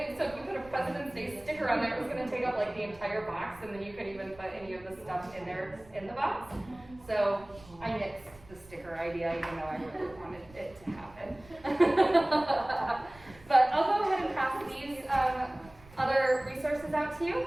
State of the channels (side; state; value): right; noise; rumble, 22 dB below the sound